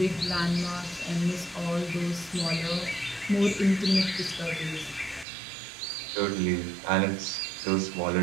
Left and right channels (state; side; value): drops out; left; at 5.2 s